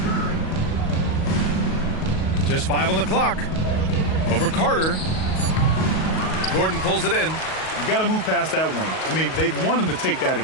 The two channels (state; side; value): late; right; 38 ms